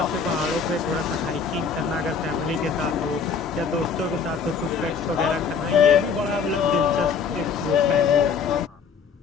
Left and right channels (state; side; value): quieter; right; 5.8 dB